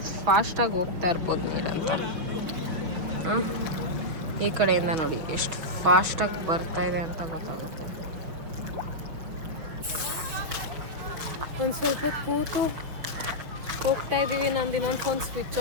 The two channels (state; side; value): late; left; 6.2 ms